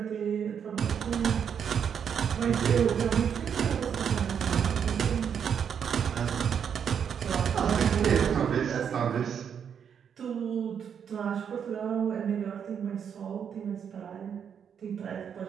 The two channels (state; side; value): quieter; left; 7.7 dB